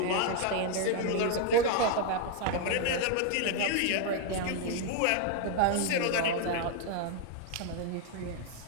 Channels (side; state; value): both; different; correlation 0.01